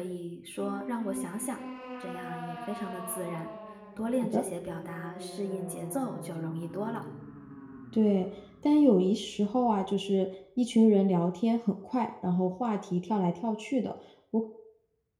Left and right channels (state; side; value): identical; both; correlation 1.00